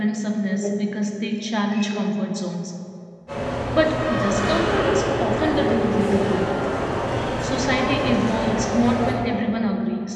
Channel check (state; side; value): identical; both; correlation 1.00